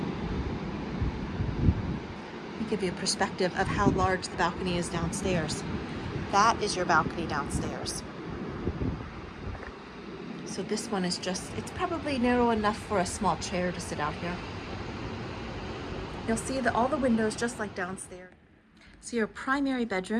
Let me give you a perspective of how large the balcony is downstairs. That is your balcony downstairs. So this one is just, it's probably narrow enough for a small chair to sit out here. You'll see that all the windows, just like downstairs. So your primary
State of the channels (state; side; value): identical; both; correlation 1.00